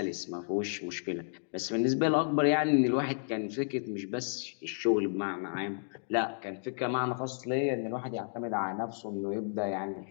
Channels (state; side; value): silent; right; digital silence